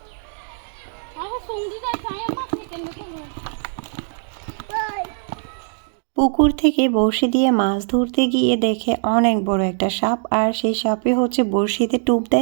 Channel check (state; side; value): silent; left; digital silence